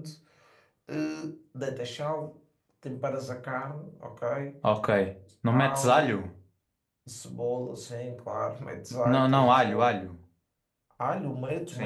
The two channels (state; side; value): identical; both; correlation 1.00